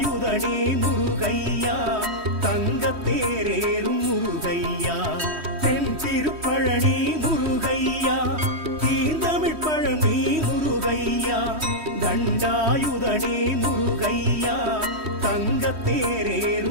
முருகையா தங்கத்தேரேறும் முருகையா தென் திருப்பழனி முருகையா தீந்தமிழ் பழனி முருகையா தண்டாயுதனே முருகையா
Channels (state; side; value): late; left; 3.1 ms